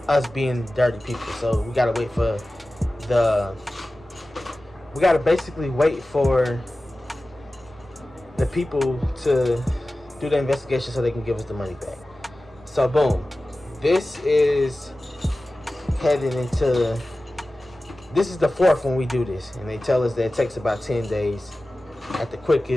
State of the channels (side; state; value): both; normal; correlation 0.96